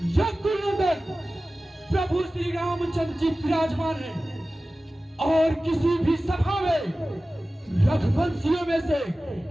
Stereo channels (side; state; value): both; normal; correlation 0.96